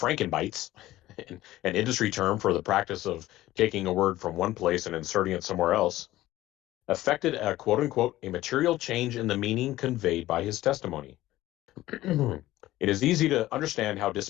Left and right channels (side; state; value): right; quieter; 15.9 dB